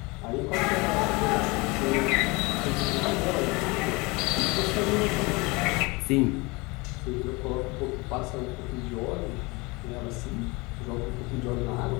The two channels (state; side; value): quieter; right; 25.8 dB